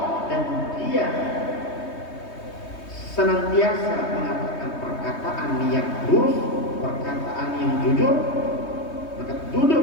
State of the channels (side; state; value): right; late; 3.2 ms